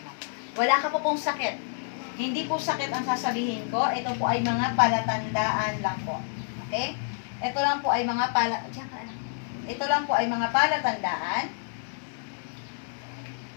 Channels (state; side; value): silent; right; digital silence